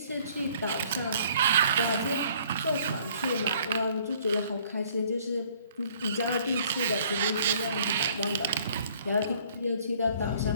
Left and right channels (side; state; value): both; inverted; correlation -0.59